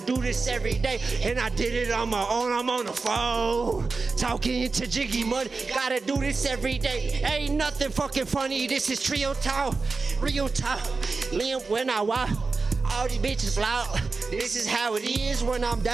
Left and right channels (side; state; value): left; quieter; 4.1 dB